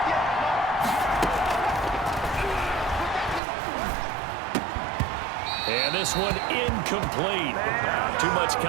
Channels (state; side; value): drops out; left; at 3.4 s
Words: And this one incomplete. Too much